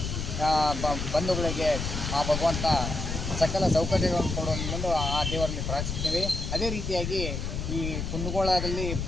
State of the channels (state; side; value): noise; left; rumble, 3 dB below the sound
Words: ಬಂಧುಗಳಿಗೆ ಆ ಭಗವಂತ ಸಕಲ ಸೌಕರ್ಯಗಳನ್ನು ಕೊಡುವ ಆ ದೇವರಲ್ಲಿ ಪ್ರಾರ್ಥಿಸುತ್ತೇವೆ. ಅದೇ ರೀತಿಯಾಗಿ ಈ ಕುಂದಗೋಳದಲ್ಲಿ